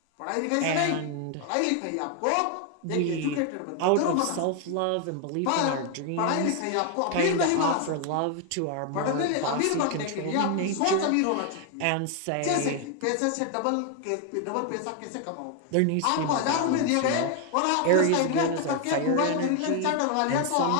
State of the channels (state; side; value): different; both; correlation 0.01